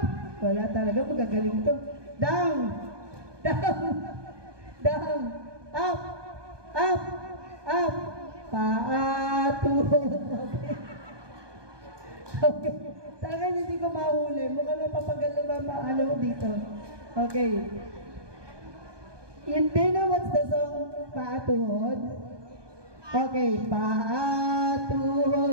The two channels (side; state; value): left; late; 1.2 ms